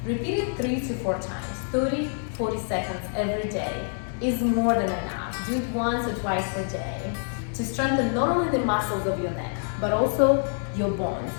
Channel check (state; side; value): silent; right; 61 dB below the other